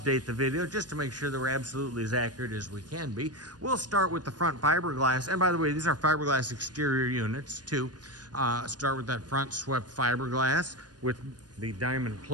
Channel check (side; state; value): left; late; 0.69 ms